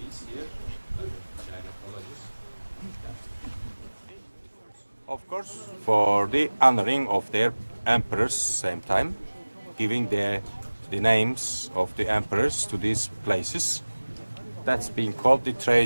here, like China. course, for the honoring of their emperors same time, giving the names of the emperors to these places. That's being called the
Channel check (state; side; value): inverted; both; correlation -1.00